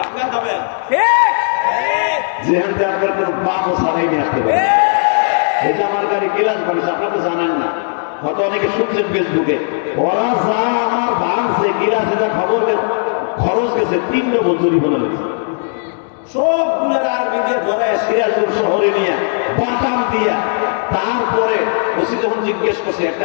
খাবেন যেখান থেকে আপনার কোনো পাপও ছাড়াই নিয়ে আসতে পারে। এই যে আমার গাড়ি গিলাস বানিয়েছে, আপনারা তো জানেন না, হয়তো অনেকে শুনছেন ফেসবুকে, ওরা যা আমার ভাঙছে গিলাস, এটা খবর খরচ গেছে 3 ডবল জরিমানা লেগেছে। সবগুলোর আর্মি দিয়ে ধরে সিরাজপুর শহরে নিয়ে বাটাম দিয়া, তারপরে ওসি যখন জিজ্ঞেস করছে, একটা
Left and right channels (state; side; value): silent; right; 69 dB below the other